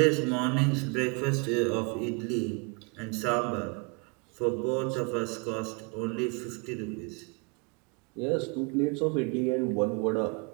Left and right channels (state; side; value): quieter; left; 33.1 dB